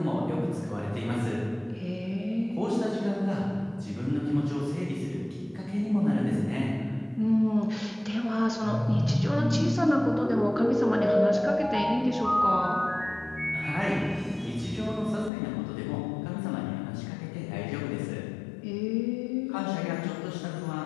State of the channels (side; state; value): right; drops out; at 15.3 s